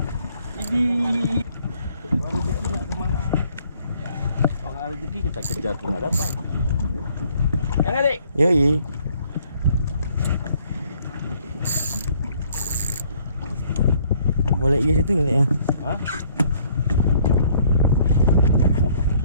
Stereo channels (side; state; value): both; inverted; correlation -0.63